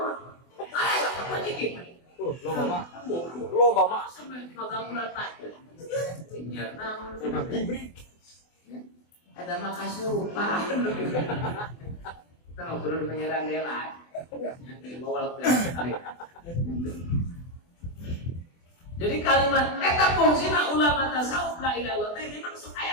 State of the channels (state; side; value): late; right; 24 ms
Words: Ayo apa jadi? lo mama Sampai magang bulan Pak. Ya, naon. hibrid Ada makasih lupa. Kita ngobrol penyiaran dela. Yang bawal kali. Jadi kalimat eta fungsina ulama tasawuf la ilaha illallah teh memang